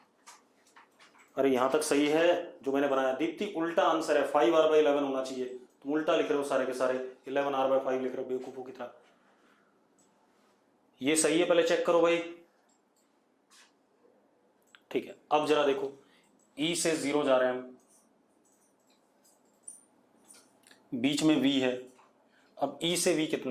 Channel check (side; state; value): both; identical; correlation 1.00